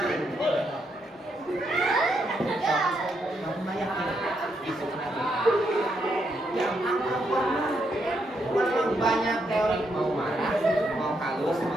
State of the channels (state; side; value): normal; both; correlation 0.78